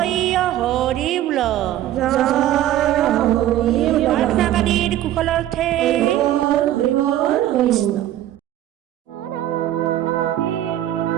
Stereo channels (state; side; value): quieter; left; 13.0 dB